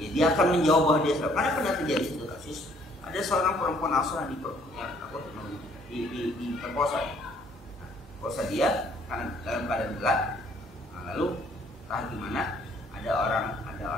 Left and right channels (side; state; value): both; normal; correlation 0.62